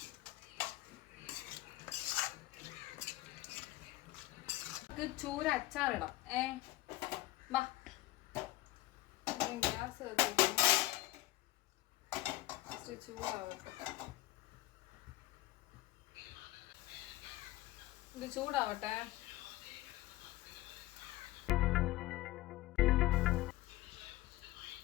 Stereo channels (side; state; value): right; quieter; 17.3 dB